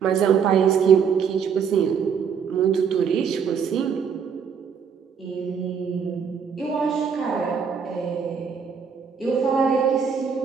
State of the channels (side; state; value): left; quieter; 6.7 dB